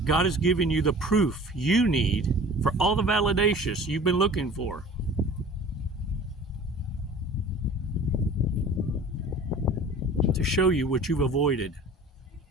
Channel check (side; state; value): both; normal; correlation 0.43